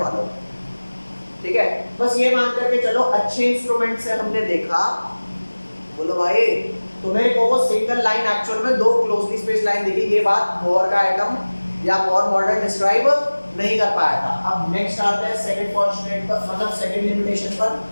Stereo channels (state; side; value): inverted; both; correlation -1.00